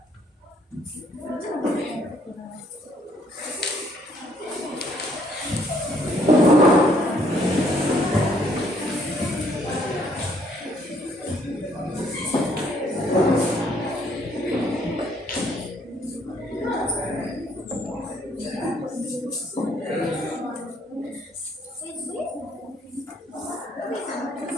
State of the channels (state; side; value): normal; both; correlation 0.65